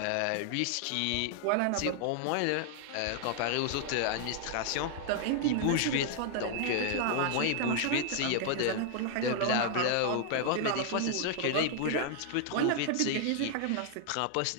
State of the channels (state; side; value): different; both; correlation 0.00